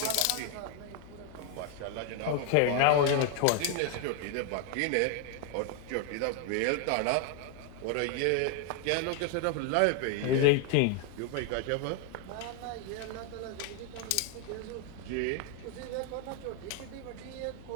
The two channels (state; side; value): different; both; correlation 0.01